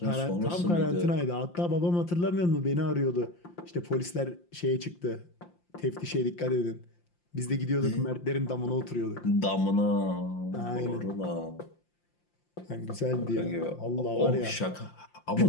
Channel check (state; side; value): late; right; 5.7 ms